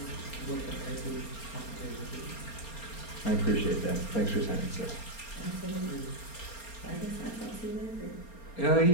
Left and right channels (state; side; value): late; right; 4.3 ms